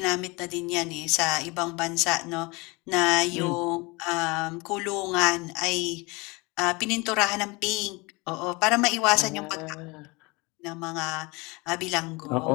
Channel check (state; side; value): quieter; right; 26.0 dB